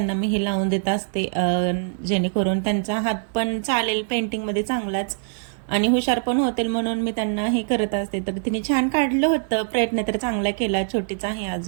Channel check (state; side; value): silent; left; 63 dB below the other